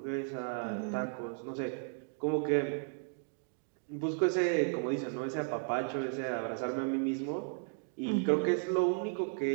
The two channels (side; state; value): left; silent; 55 dB below the other